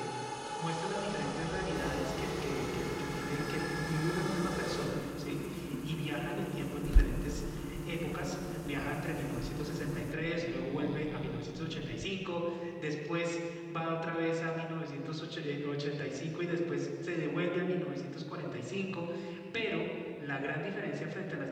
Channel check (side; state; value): both; identical; correlation 1.00